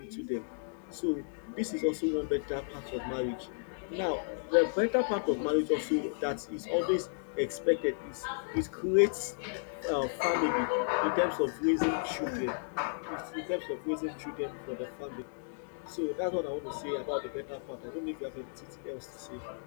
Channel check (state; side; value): silent; right; digital silence